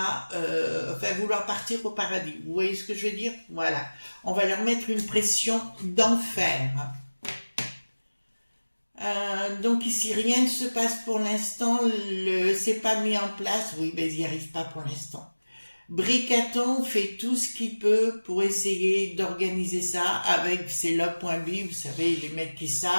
vouloir partir au paradis. Vous voyez ce que je veux dire? Voilà. On va leur mettre une pression d'enfer. Donc ici, rien ne se passe pour l'instant, c'est pas mis en place, oui, mais ils n'y arrivent pas pour l'instant. Bricaton fait tout ce qu'il peut pour essayer d'organiser ça avec ses logs.b, vous savez, les mecs qui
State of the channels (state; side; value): inverted; both; correlation -1.00